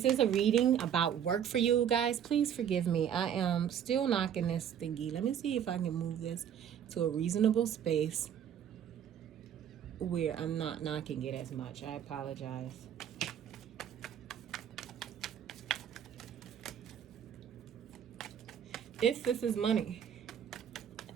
is a reading about work for you guys, please forgive me. I am still knocking this thingy. Let me see if I can move this to a reasonable space where I'm not knocking it as much. I apologize. If this is money,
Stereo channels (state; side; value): quieter; left; 9.0 dB